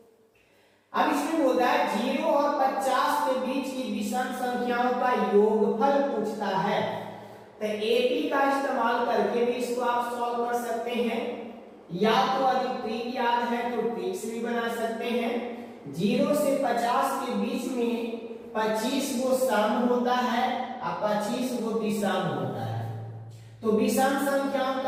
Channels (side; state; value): both; identical; correlation 1.00